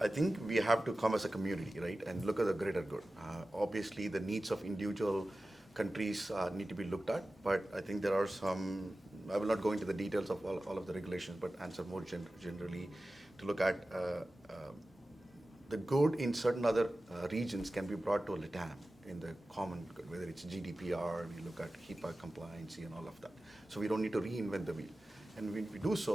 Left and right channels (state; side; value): normal; both; correlation 0.95